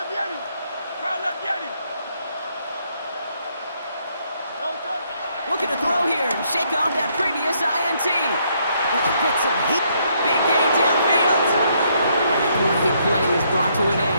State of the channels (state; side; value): inverted; both; correlation -0.72